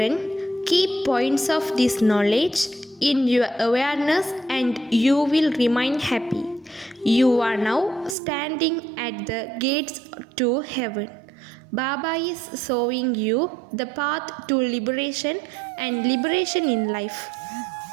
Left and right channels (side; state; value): left; drops out; at 8.2 s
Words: keep points of this knowledge in your awareness and you will remain happy. You are now standing at the gates to heaven. Baba is showing you the path to liberation and liberation in life.